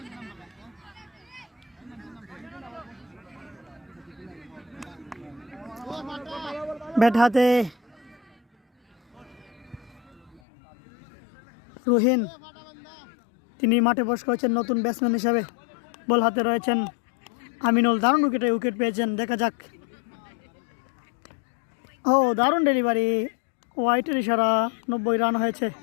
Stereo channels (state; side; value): drops out; right; at 10.4 s